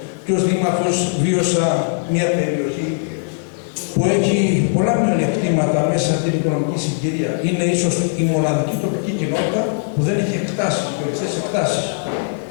και ως δήμαρχος βίωσα μια περιοχή που έχει πολλά μειονεκτήματα μέσα στην οικονομική συγκυρία. Είναι ίσως η μοναδική τοπική κοινότητα που δεν έχει εκτάσεις, χωριστές εκτάσεις.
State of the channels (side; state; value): right; silent; digital silence